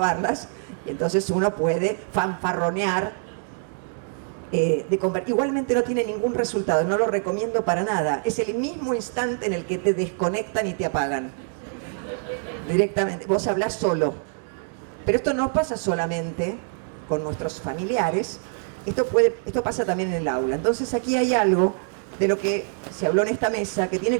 y entonces uno puede fanfarronear. Igualmente no tiene ningún resultado, no lo recomiendo para nada. Es el mismo instante en el que te desconectan y te apagan. Directamente, vos hablás solo. Pero esto no pasa solamente con nuestros familiares, esto pasa también en el aula. Entonces aquí hay algo de lo que se habló en esta mesa que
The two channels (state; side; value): silent; left; 62 dB below the other